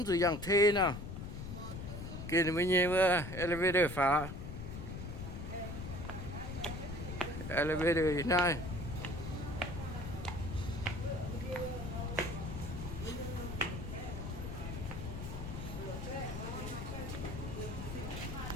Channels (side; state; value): left; noise; rumble, 7 dB below the sound